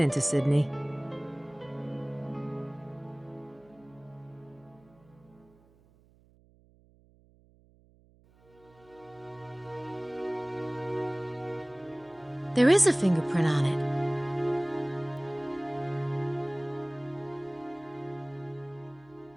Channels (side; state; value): right; noise; hum, 29 dB below the sound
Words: Sydney. There is a fingerprint on it.